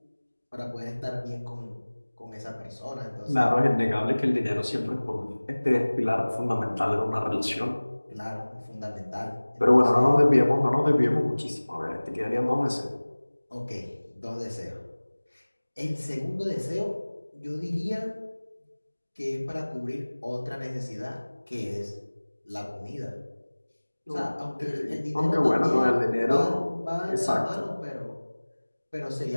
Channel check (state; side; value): inverted; both; correlation -1.00